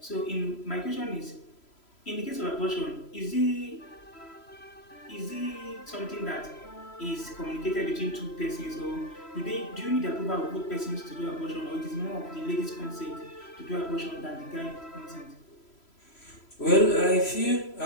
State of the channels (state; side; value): late; right; 3.0 ms